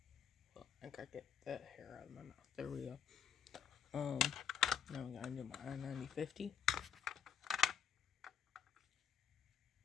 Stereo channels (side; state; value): right; quieter; 7.9 dB